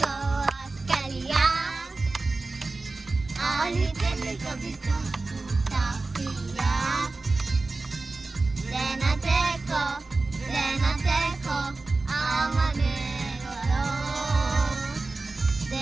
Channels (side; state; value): left; quieter; 3.5 dB